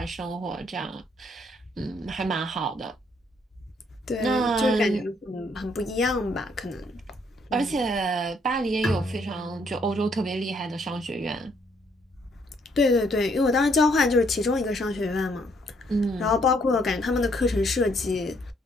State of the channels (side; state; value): both; normal; correlation 0.69